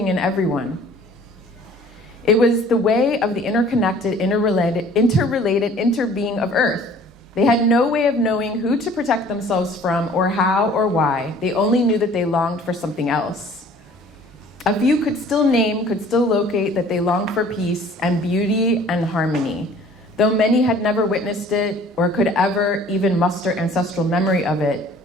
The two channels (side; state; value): both; normal; correlation 0.51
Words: and everyone. It was the way of the interconnected, interrelated interbeing of Earth. They had no way of knowing who to protect themselves from or how or why. They only knew that they longed for something else. A few could still locate that they longed for peace and beauty and harmony. Though many had never witnessed it or could ever even muster ancestral memory of it,